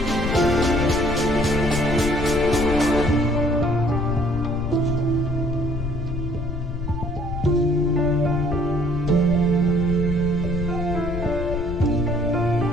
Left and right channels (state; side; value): noise; left; rumble, 5 dB below the sound